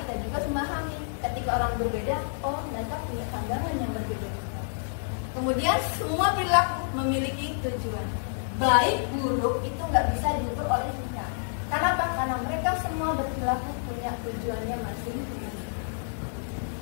juga memahami ketika orang berbeda, oh mereka punya pandangan yang berbeda. Kemudian semua perilaku memiliki tujuan. Baik buruk itu nggak bisa diukur oleh kita. Kenapa? Karena mereka semua berperilaku punya tujuannya masing-masing.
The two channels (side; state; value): right; silent; 59 dB below the other